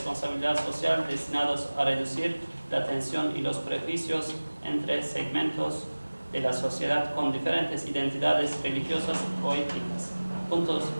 social destinados a reducir la tensión y los prejuicios entre segmentos de la sociedad con diferentes identidades religiosas o étnicas, puntos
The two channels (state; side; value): inverted; both; correlation -1.00